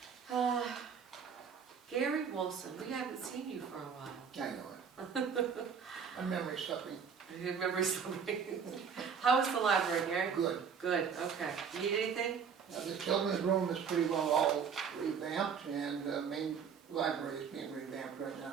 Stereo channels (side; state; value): left; quieter; 6.7 dB